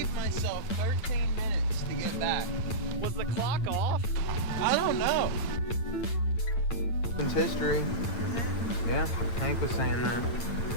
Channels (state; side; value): late; right; 8.9 ms